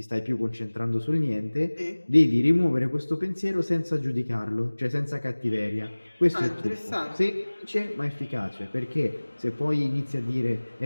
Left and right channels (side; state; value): both; inverted; correlation -1.00